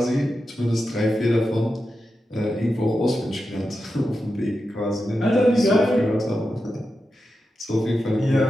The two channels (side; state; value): both; normal; correlation 0.90